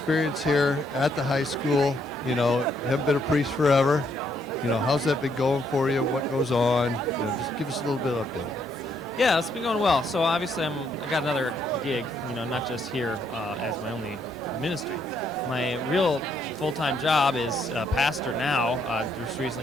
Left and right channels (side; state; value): both; normal; correlation 0.72